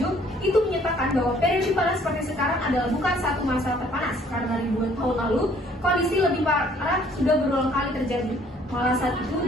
itu menyatakan bahwa periode panas seperti sekarang adalah bukan satu masa terpanas, karena ribuan tahun lalu, kondisi lebih parah sudah berulang kali terjadi. Malah saat itu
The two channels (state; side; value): normal; both; correlation 0.60